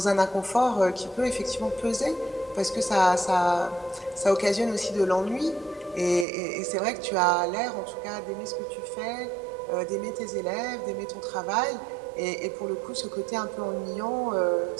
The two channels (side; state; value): left; drops out; at 6.2 s